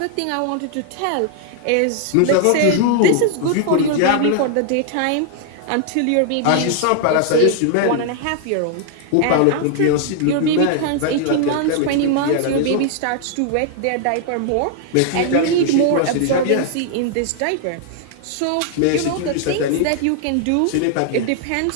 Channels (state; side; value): different; both; correlation 0.00